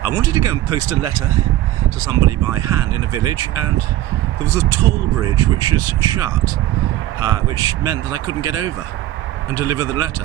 wanted to go and post a letter to somebody by hand in a village, and there was a toll bridge which was shut, which meant that I couldn't get over and deliver the letter,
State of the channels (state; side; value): quieter; left; 14.4 dB